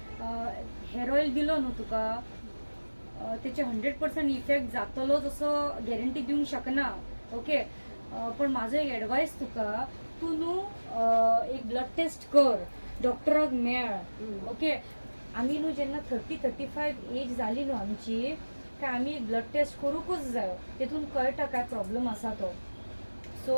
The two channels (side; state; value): both; inverted; correlation -1.00